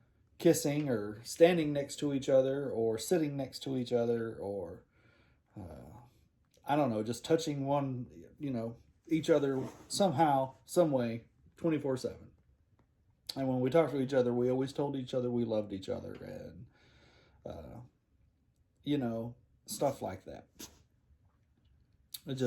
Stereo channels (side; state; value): both; identical; correlation 1.00